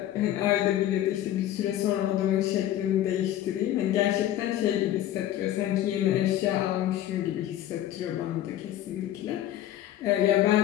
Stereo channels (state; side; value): quieter; right; 12.6 dB